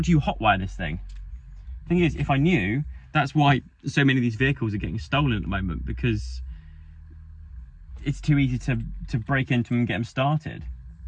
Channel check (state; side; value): identical; both; correlation 1.00